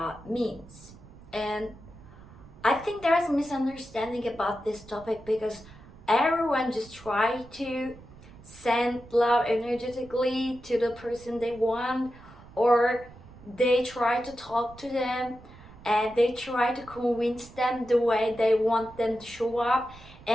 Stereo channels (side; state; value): right; noise; rumble, 20 dB below the sound